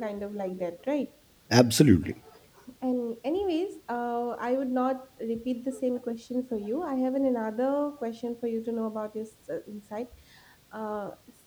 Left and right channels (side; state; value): both; identical; correlation 1.00